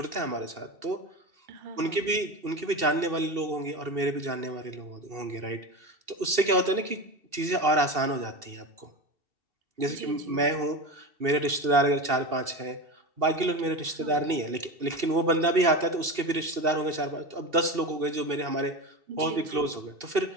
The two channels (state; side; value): late; left; 2.7 ms